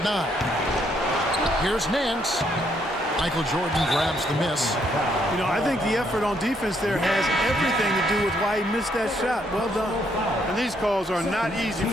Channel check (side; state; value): both; normal; correlation 0.72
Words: 9. Here's Nance. Michael Jordan grabs the miss. You know, I think the effort on defense there has everything to do with why he missed that shot. Well done. And these calls are not easy